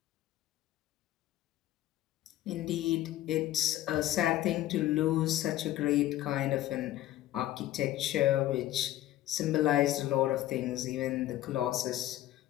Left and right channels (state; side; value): quieter; right; 14.3 dB